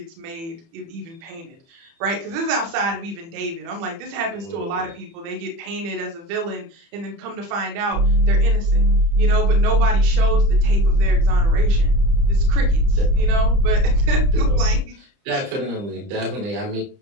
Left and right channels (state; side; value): late; left; 30 ms